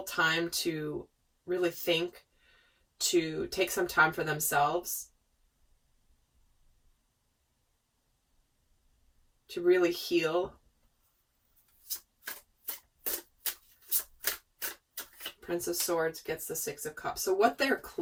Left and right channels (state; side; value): identical; both; correlation 1.00